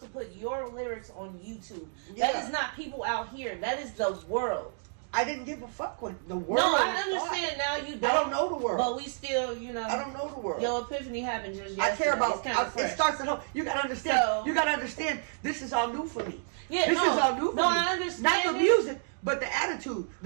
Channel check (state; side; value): silent; left; digital silence